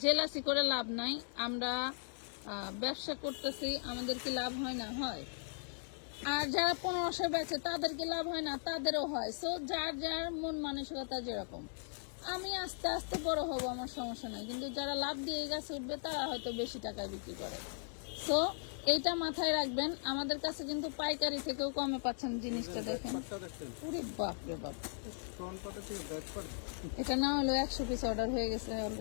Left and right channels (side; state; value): right; silent; digital silence